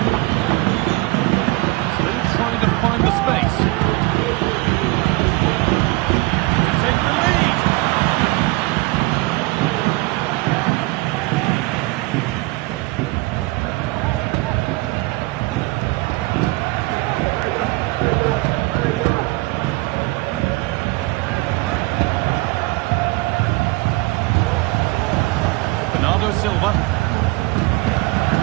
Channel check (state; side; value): quieter; left; 23.5 dB